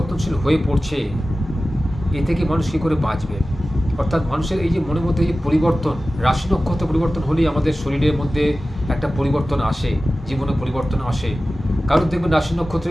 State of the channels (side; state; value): both; normal; correlation 0.96